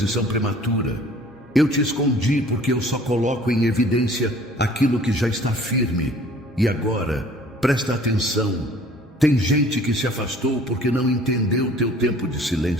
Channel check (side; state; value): both; normal; correlation 0.52